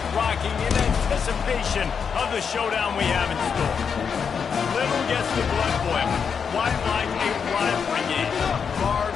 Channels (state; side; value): quieter; right; 6.5 dB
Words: rocking in anticipation of the showdown we have in store. Little gets the blood boiling, quite like a rivalry game.